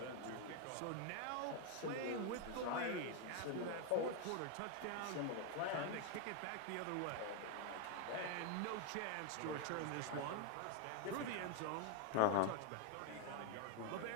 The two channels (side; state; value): both; different; correlation 0.01